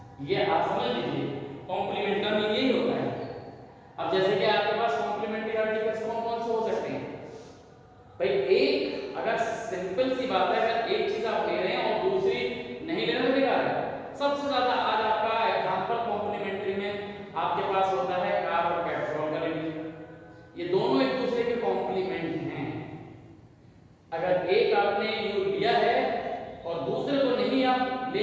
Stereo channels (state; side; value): identical; both; correlation 1.00